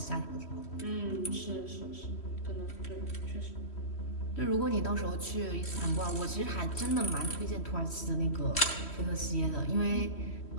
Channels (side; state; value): right; late; 3.1 ms